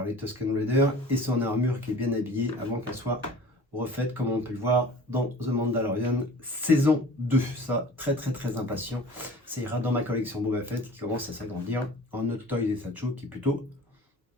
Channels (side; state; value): both; normal; correlation 0.43